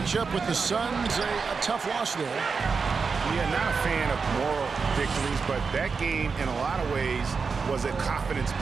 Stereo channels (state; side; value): quieter; left; 5.1 dB